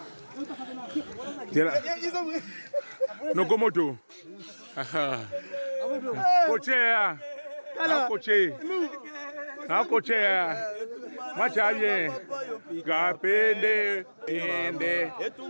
tela nokomoto kochea akochea macha bien kapende ende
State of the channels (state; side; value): inverted; both; correlation -1.00